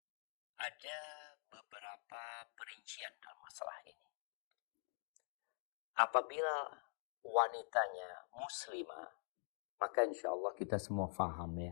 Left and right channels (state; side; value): silent; right; digital silence